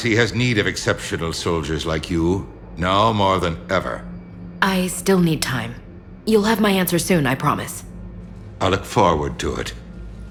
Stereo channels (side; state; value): both; identical; correlation 1.00